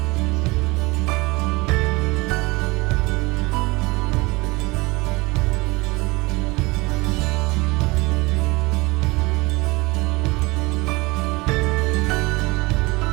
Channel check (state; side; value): quieter; left; 23.8 dB